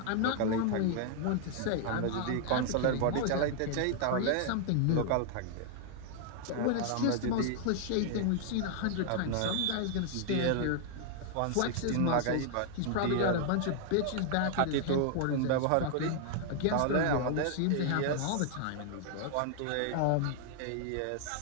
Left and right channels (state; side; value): different; both; correlation 0.00